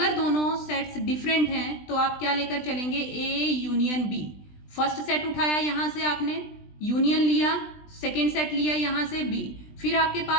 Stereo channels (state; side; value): late; right; 20 ms